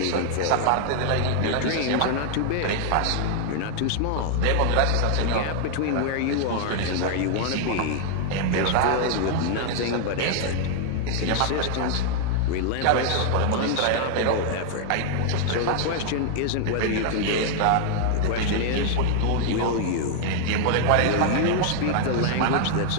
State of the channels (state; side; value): different; both; correlation 0.00